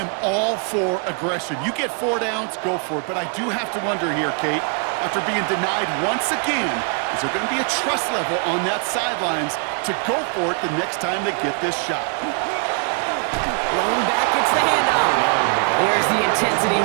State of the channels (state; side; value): quieter; left; 39.9 dB